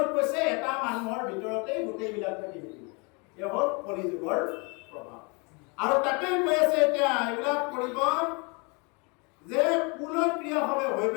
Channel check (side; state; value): right; quieter; 30.9 dB